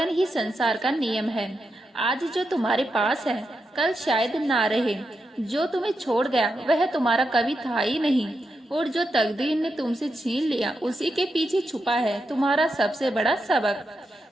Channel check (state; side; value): normal; both; correlation 0.86